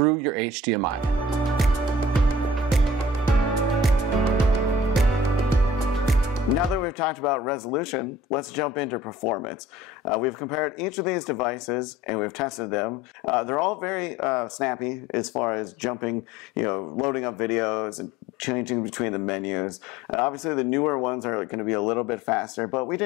your HDMI. Now that we've talked about resolution, let's jump into performance. We've compared each of these devices and we've tested them. They're all very snappy as far as jumping, loading up videos and changing between the menus. Obviously the newer ones are going to be a little bit faster, but we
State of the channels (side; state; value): both; normal; correlation 0.48